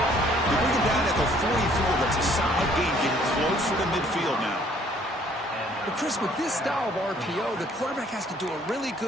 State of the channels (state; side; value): normal; both; correlation 0.61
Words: They bring him down at the 44. That's a solid gain, getting closer to midfield now. But Chris, with this style of RPO, the quarterback has to do a really